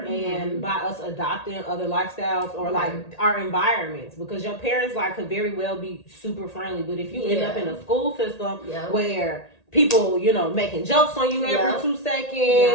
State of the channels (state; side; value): late; right; 1.8 ms